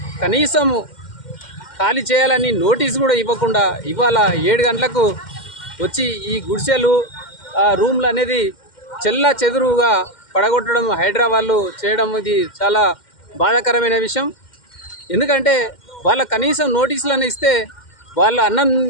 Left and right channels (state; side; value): late; right; 2.1 ms